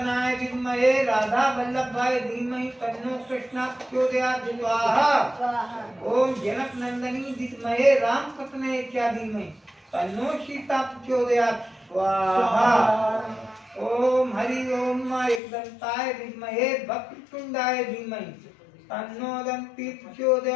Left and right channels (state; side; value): drops out; right; at 15.4 s